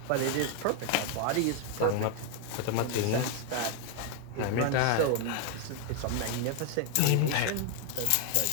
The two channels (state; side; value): different; both; correlation 0.00